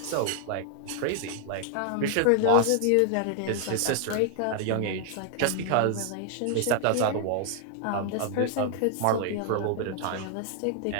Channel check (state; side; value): different; both; correlation 0.00